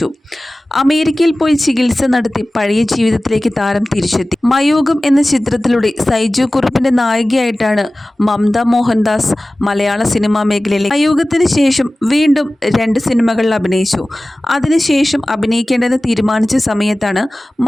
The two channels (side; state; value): both; normal; correlation 0.97